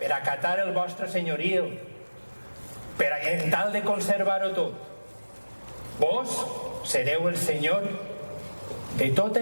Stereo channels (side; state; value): both; inverted; correlation -1.00